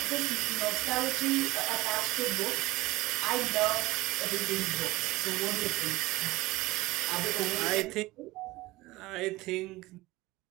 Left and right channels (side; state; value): left; quieter; 19.5 dB